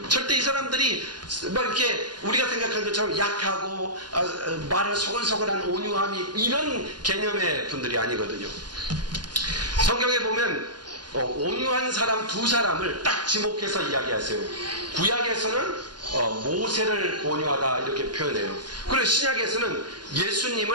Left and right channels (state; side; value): late; left; 0.70 ms